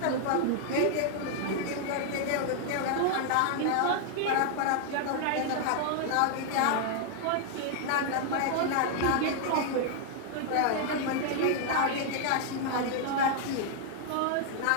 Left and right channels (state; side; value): different; both; correlation 0.00